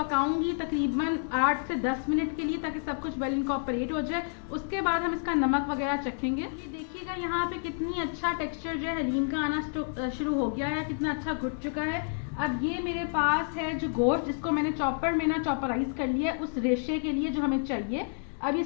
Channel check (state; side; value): silent; right; digital silence